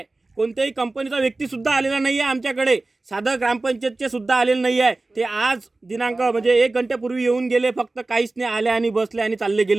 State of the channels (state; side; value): quieter; left; 3.2 dB